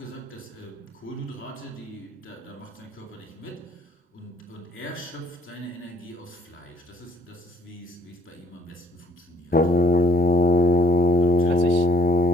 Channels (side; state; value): both; normal; correlation 0.64